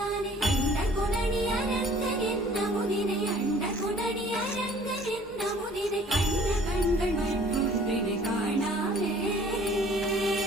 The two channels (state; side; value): normal; both; correlation 0.53